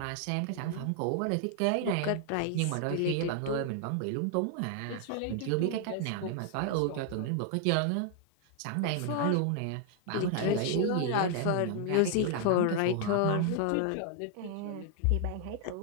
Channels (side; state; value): both; different; correlation 0.00